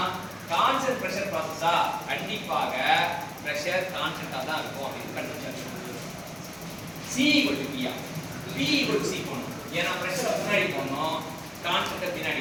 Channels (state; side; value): identical; both; correlation 1.00